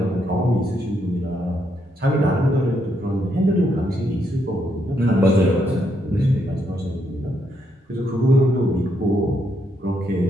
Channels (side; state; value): both; normal; correlation 0.77